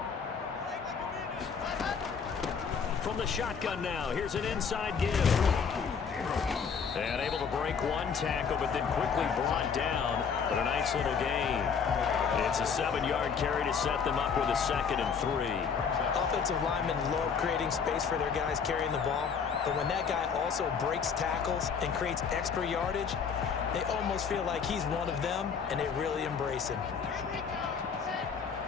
From the shotgun now, here's an inside give. And able to break one tackle, but then quickly brought down. But a nice little gain. It's a 7-yard carry to set them up with a 2nd and 3. Offensive linemen love creating space for their guys carrying the ball, but when that guy also breaks tackles and creates extra yardage, they almost feel like he's one of them, and they really embrace him.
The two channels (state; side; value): quieter; right; 6.3 dB